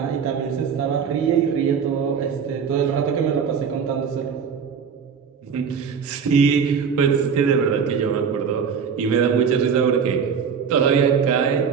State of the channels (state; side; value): quieter; left; 6.6 dB